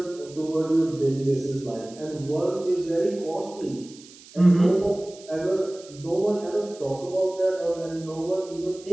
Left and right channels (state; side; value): noise; right; hiss, 21 dB below the sound